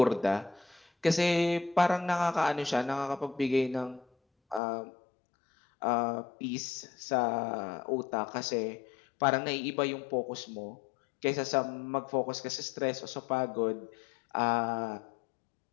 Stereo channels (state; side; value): drops out; right; at 4.6 s